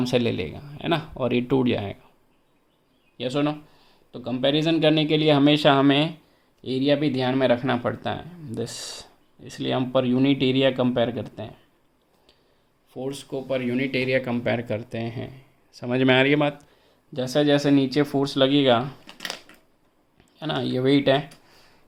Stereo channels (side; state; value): both; identical; correlation 1.00